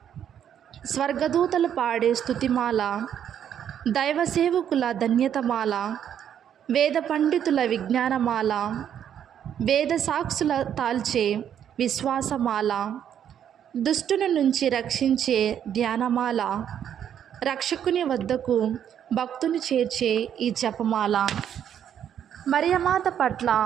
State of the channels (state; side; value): quieter; left; 9.4 dB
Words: స్వర్గదూతలు పాడే స్తుతిమాల, దైవ సేవకుల ధన్యతమాల, వేద పండితుల విజ్ఞానమాల, వేద సాక్షుల తాల్చే విశ్వాసమాల, దుష్టుని నుంచి రక్షించే ధ్యానమాల, రక్షకుని వద్దకు భక్తుని చేర్చే ఈ జపమాల. మరియమాత పట్ల